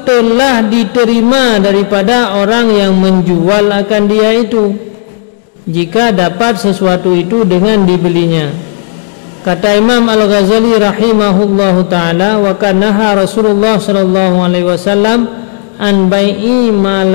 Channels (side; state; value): right; silent; digital silence